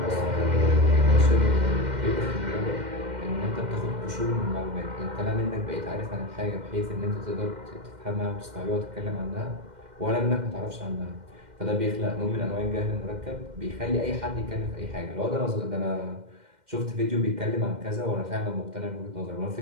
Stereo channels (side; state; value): left; late; 2.1 ms